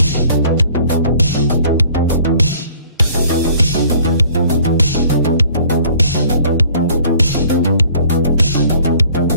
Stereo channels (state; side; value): inverted; both; correlation -0.55